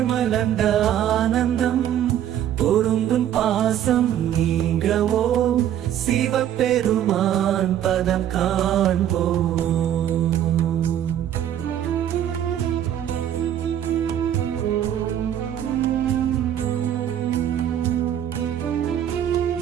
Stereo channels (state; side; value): quieter; left; 10.6 dB